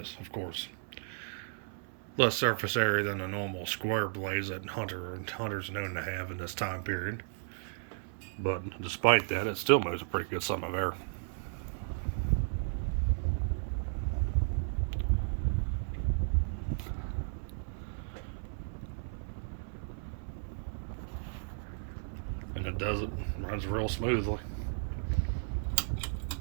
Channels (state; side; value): silent; left; 55 dB below the other